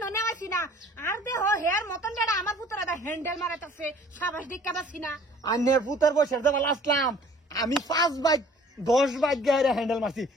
নেওয়াছি না। আর দেহ হেয়ার মতন যেটা আমার ফুতারে দা হ্যান্ডেল মারাইতাছে। সাবাস দিকা বাসি না। আন্নের পুতার বসে দেবা লাস্টলাম আমি 5 বাইক 10 বাইক গায়ে হ্যান্ডেল মারছি।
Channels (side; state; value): both; normal; correlation 0.52